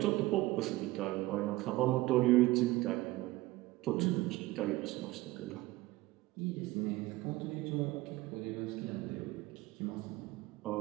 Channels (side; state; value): left; quieter; 18.8 dB